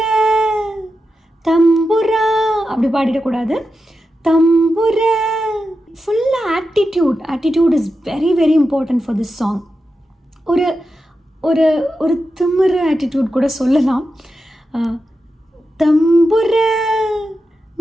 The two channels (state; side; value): normal; both; correlation 0.89